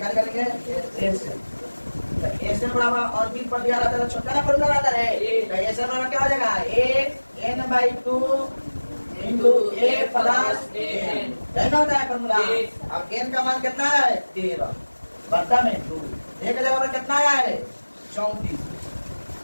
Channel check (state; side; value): inverted; both; correlation -1.00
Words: निकालेंगे? a से। तो a से बराबर अंतिम पर दिया रहता है, छोटा ना फॉर्मूला रहता है, तो a से बराबर क्या हो जाएगा? a n/2 into a plus n, यही ना होता है फॉर्मूला। अब n का मान कितना है 13 बट्टा में 2 एक जगह पर कितना आया है